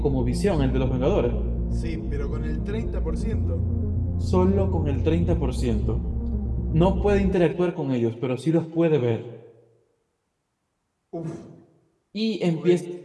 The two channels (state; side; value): identical; both; correlation 1.00